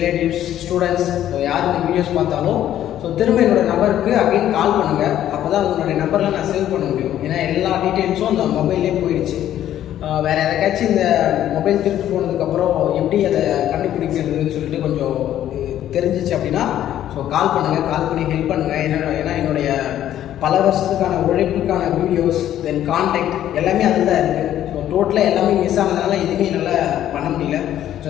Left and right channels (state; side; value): quieter; right; 11.7 dB